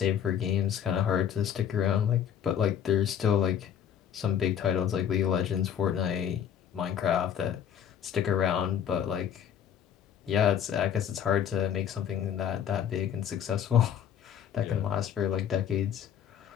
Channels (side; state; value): right; quieter; 9.0 dB